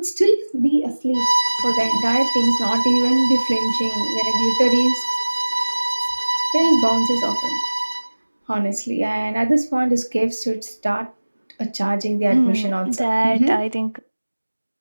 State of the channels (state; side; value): inverted; both; correlation -1.00